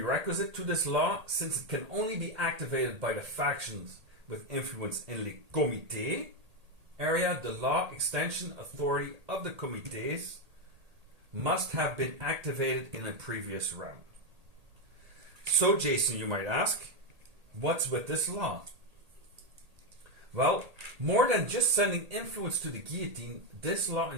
to this law, since it can only be activated by the factions with influence in les comités area. The law extension authority of the comités must have been activated in a previous round. So, Jason, you might ask, what's with this law? Well, more than just sending influence to the guillotine, this law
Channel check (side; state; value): left; late; 1.8 ms